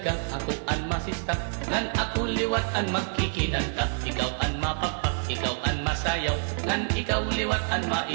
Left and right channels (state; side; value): silent; left; 60 dB below the other